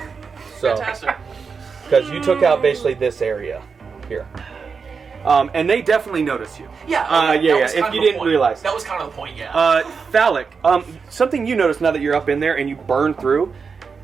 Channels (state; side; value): quieter; left; 5.4 dB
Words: So, Fantastic. because you took out basically this area here. And they definitely notice you. Yeah. That was if kind you of the didn't point. realize. That was kind of the point. Yeah. Phallic, something you notice now that you're up in there and you burn through,